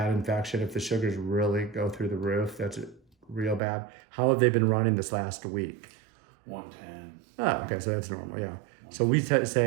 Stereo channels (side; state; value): left; drops out; at 3.6 s